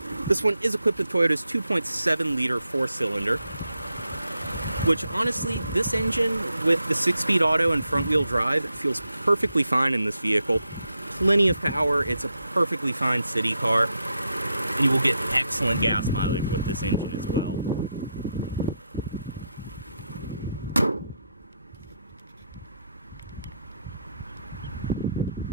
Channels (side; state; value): both; inverted; correlation -0.82